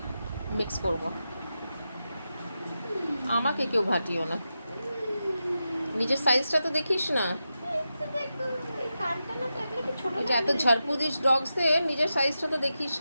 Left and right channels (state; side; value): inverted; both; correlation -0.90